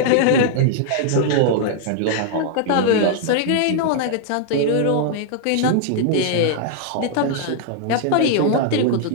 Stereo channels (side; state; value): both; different; correlation -0.01